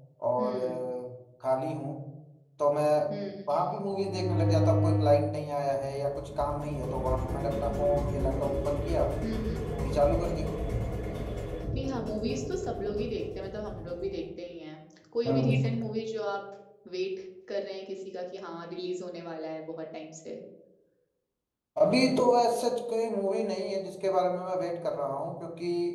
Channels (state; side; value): identical; both; correlation 1.00